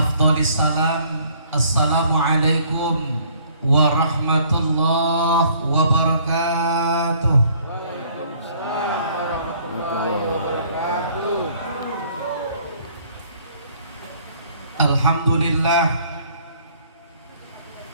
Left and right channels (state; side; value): inverted; both; correlation -0.60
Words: salam. Assalamualaikum warahmatullahi wabarakatuh. Alhamdulillah.